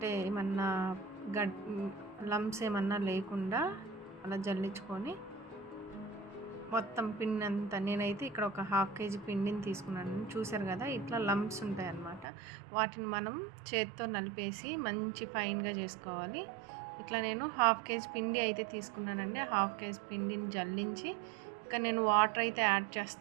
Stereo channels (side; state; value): left; drops out; at 12.2 s